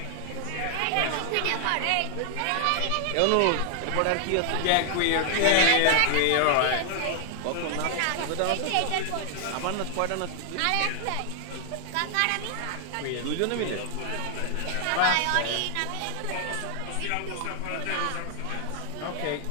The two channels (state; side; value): different; both; correlation 0.00